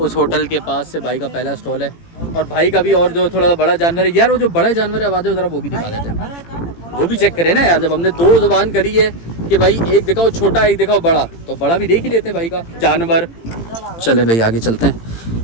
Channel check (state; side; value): late; right; 18 ms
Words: होटल के पास से भाई का पहला स्टॉल है। और भाई का भी और जो थोड़ा बड़ा जानवर है यार, वो जो बड़ा जानवर है आवाज़ ज़रा वो भी दिखा देते हैं, वो भी चेक करें ना यार। जब हमने 2 ज़ुबान करी है कि भाई एक दिखाओ छोटा एक दिखाओ बड़ा, तो बड़ा भी देख ही लेते हैं भाई का जानवर। चले भाई आगे चलते हैं।